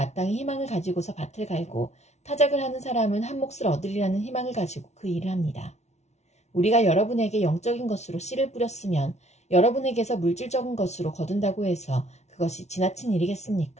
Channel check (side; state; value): right; late; 0.32 ms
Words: 희망을 가지고서 밭을 갈고 타작을 하는 사람은 한 몫을 얻으리라는 희망을 가지고 그 일을 합니다. 우리가 여러분에게 영적인 것으로 씨를 뿌렸으면 여러분에게서 물질적인 것으로 거둔다고 해서 그것이 지나친